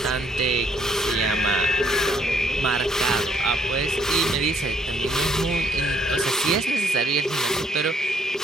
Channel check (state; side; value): normal; both; correlation 0.67